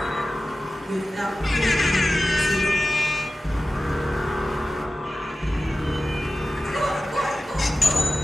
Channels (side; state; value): both; normal; correlation 0.95